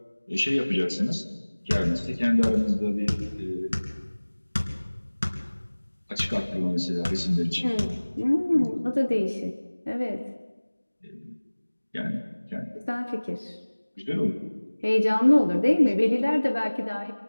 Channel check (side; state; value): both; inverted; correlation -1.00